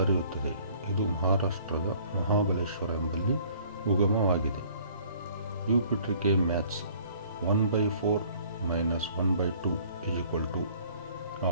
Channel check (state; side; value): inverted; both; correlation -0.54